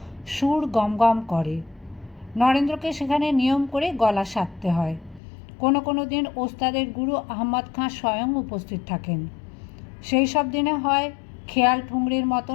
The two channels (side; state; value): right; drops out; at 5.2 s